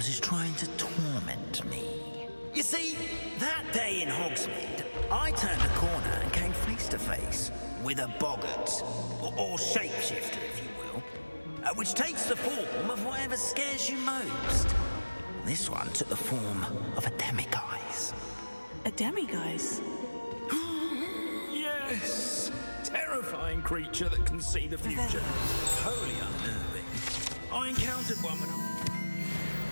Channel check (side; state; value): both; inverted; correlation -1.00